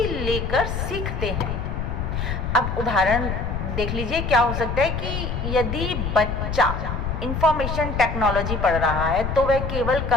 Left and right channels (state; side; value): noise; left; rumble, 3 dB below the sound